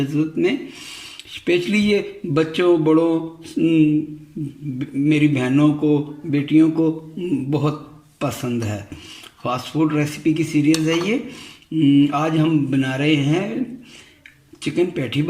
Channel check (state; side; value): identical; both; correlation 1.00